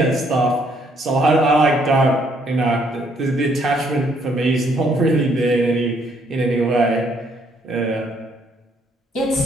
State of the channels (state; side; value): normal; both; correlation 0.68